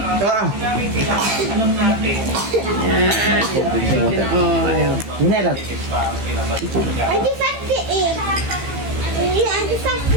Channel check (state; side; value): late; left; 15 ms